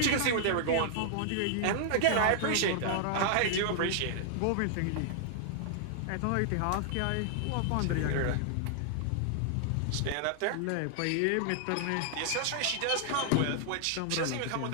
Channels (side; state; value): both; different; correlation -0.01